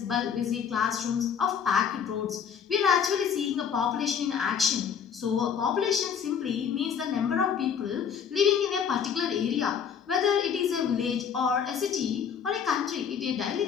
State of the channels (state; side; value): quieter; right; 7.3 dB